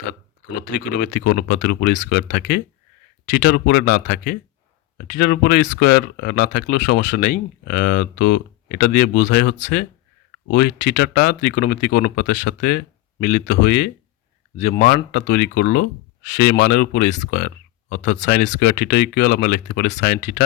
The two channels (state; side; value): quieter; right; 17.1 dB